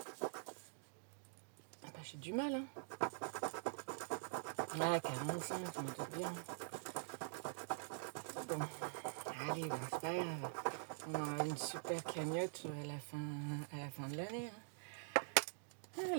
Ah bah, j'ai du mal, hein. Ah, 45, je me doute bien. Bon, allez, bah, c'est pas grave. On aura une super cagnotte à la fin de l'année. Hein. Oh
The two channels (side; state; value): left; silent; digital silence